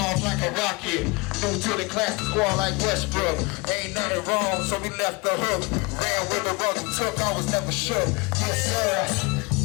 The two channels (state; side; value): quieter; right; 27.0 dB